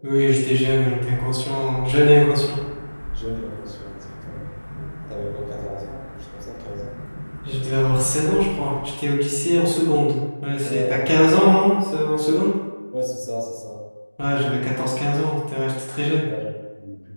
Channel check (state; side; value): inverted; both; correlation -1.00